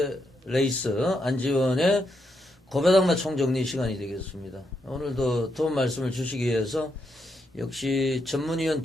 레이스 안지원의 고배당마 총정리 시간이 되겠습니다. 오늘도 도움 말씀을 주시기 위해서 역시 전문위원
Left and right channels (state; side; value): normal; both; correlation 0.80